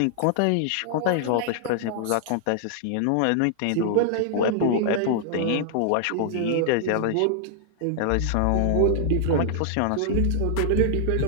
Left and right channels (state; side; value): different; both; correlation -0.01